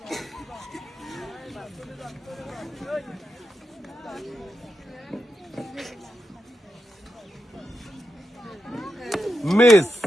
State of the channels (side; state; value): both; normal; correlation 0.87